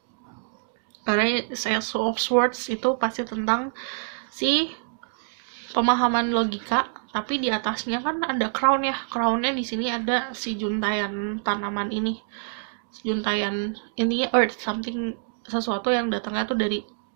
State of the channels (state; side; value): silent; left; digital silence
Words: Karena Ace of Swords itu pasti tentang si pemahaman logika, tapi di atasnya kan ada crown ya. Crownnya di sini ada si juntayan tanaman ini, juntayan ini earth, something, sesuatu yang datangnya tuh dari